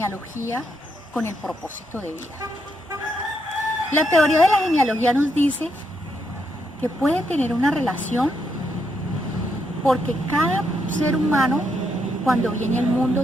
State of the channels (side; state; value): both; normal; correlation 0.78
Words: con el propósito de vida? La teoría de la genealogía nos dice que puede tener una relación porque cada ser humano cuando viene al mundo